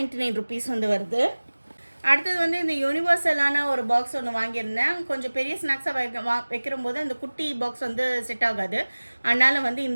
ருபீஸ் வந்து வருது. அடுத்தது வந்து இந்த யூனிவர்சலான ஒரு பாக்ஸ் ஒன்று வாங்கியிருந்தேன். கொஞ்சம் பெரிய ஸ்நாக்ஸாக வைக்கிற போது அந்த குட்டி பாக்ஸ் வந்து செட் ஆகாது. அதனால் வந்து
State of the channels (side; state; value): both; inverted; correlation -1.00